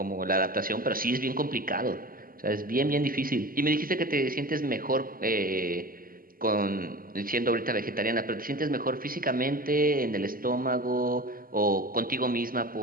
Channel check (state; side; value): late; left; 0.42 ms